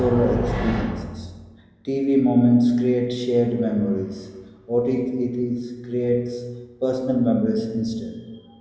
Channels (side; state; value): both; identical; correlation 1.00